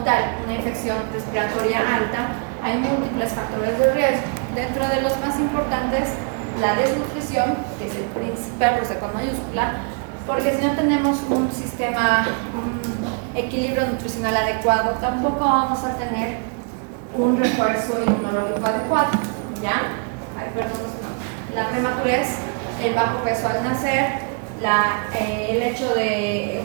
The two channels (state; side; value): quieter; left; 39.5 dB